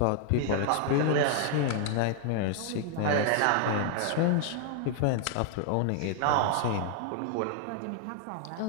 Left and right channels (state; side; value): different; both; correlation 0.00